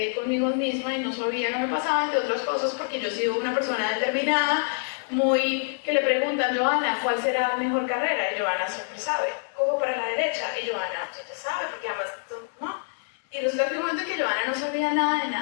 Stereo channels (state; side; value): silent; right; digital silence